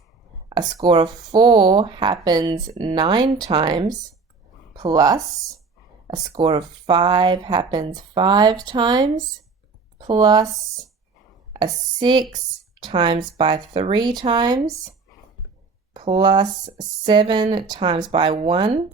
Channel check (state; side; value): quieter; left; 4.5 dB